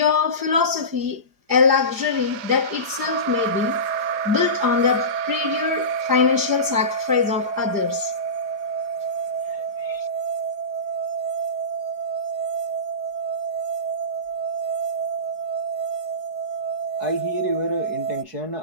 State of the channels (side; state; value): left; late; 4.9 ms